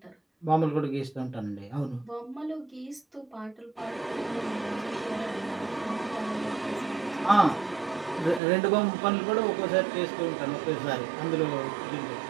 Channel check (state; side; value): drops out; left; at 8.4 s